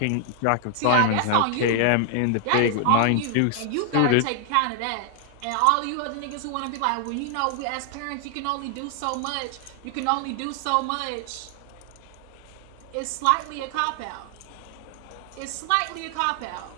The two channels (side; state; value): both; different; correlation 0.00